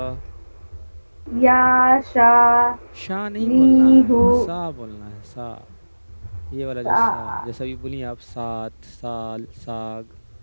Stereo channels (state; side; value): inverted; both; correlation -1.00